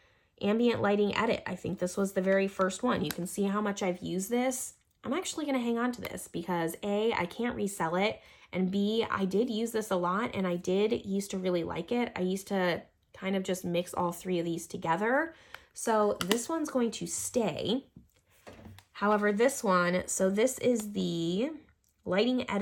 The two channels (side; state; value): both; identical; correlation 1.00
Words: Ambient Lighting Edit. I think this was the very first one. You can see how much I've used this. I'm actually going to hang on to this because A, I can't resell it, and B, I did use this a lot, and I did used to really like it. I used to kind of just mix all 3 of these together. So this one's going to stay. However, this one, so this is the Lighting